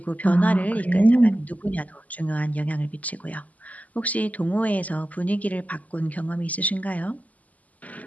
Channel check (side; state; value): right; late; 0.075 ms